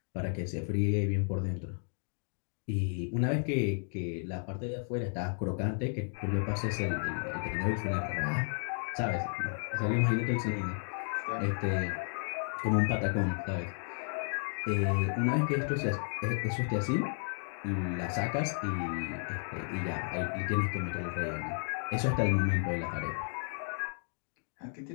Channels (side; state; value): right; silent; 56 dB below the other